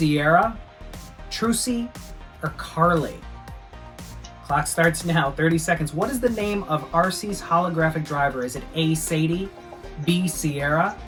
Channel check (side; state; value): both; identical; correlation 1.00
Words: Trucy, or Carly? Clock starts now, 30 seconds. What is the name of RC's holographic driver? Is it A, Sadie, B, Sierra,